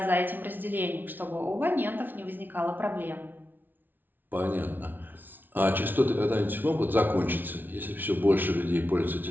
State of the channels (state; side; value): late; left; 0.089 ms